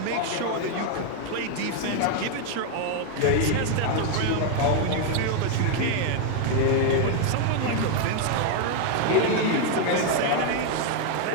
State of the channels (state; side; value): different; both; correlation 0.00